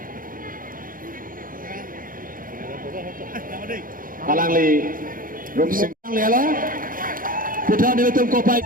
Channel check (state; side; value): late; left; 0.40 ms